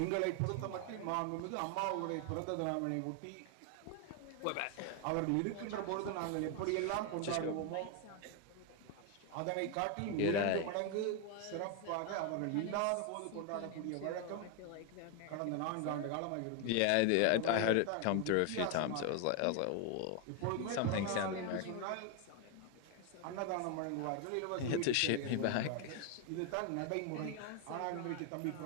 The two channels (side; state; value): both; different; correlation 0.01